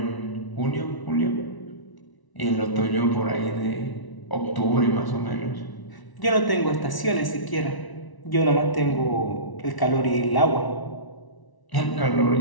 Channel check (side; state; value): right; late; 1.1 ms